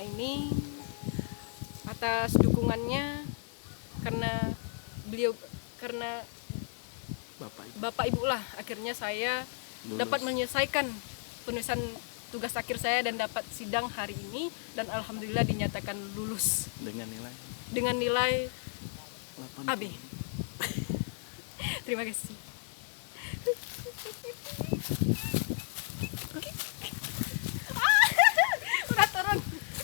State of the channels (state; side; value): silent; right; digital silence